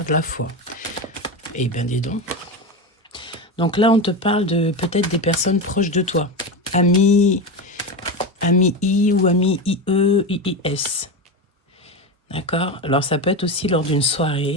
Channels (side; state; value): both; normal; correlation 0.19